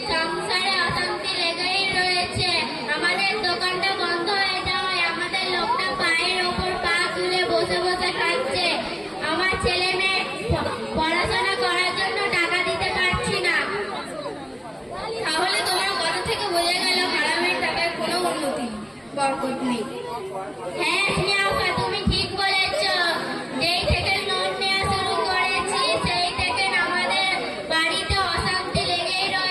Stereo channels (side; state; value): both; identical; correlation 1.00